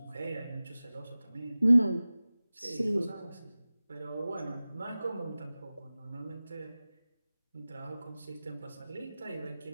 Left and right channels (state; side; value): inverted; both; correlation -0.97